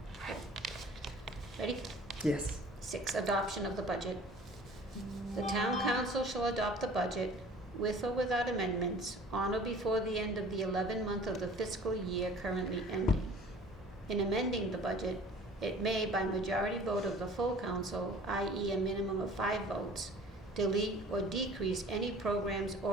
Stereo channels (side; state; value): both; normal; correlation 0.47